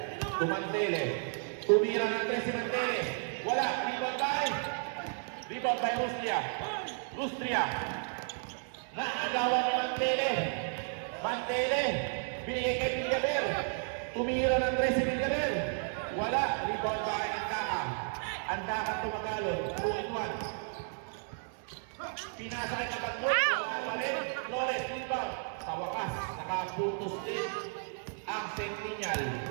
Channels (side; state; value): left; silent; 56 dB below the other